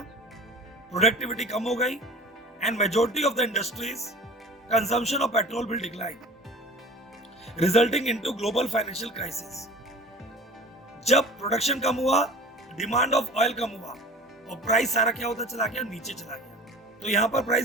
प्रोडक्टिविटी कम हो गई, and majority of the industries consumption of petrol will decline, resulting into global financial crisis. जब प्रोडक्शन कम हुआ, डिमांड ऑफ ऑयल कम हुआ और प्राइस सारा क्या होता चला गया, नीचे चला गया। तो यहां पर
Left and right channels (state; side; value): normal; both; correlation 0.41